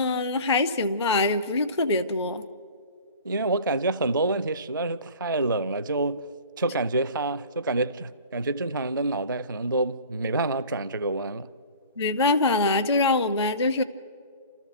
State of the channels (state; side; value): inverted; both; correlation -0.42